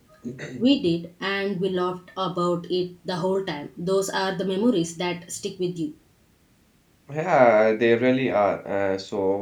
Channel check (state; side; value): identical; both; correlation 1.00